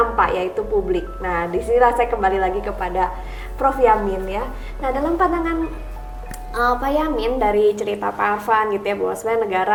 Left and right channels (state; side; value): identical; both; correlation 1.00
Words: yaitu publik. Nah, disinilah saya kembali lagi kepada Prof. Yamin ya. Nah, dalam pandangan Pak Yamin dari cerita Pak Arfan gitu ya, bahwa sebenarnya